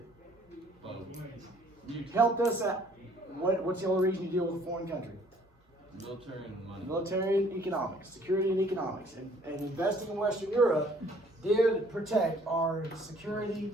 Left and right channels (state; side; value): normal; both; correlation 0.58